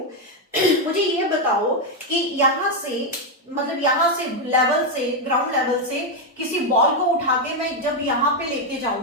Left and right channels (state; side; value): normal; both; correlation 0.03